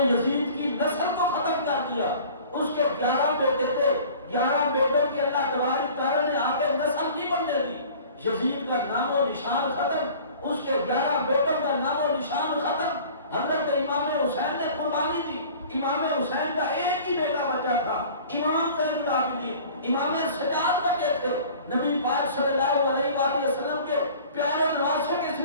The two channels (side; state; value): both; inverted; correlation -0.46